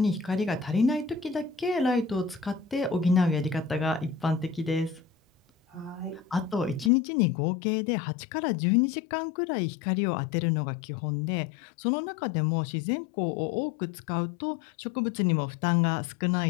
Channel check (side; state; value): right; drops out; at 6.9 s